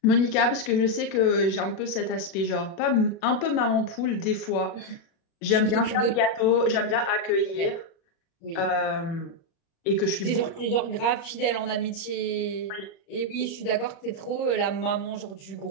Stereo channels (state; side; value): late; right; 36 ms